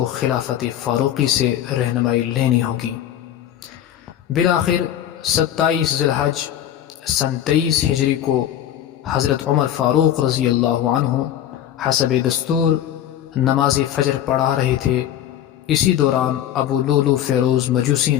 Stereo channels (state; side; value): quieter; right; 11.0 dB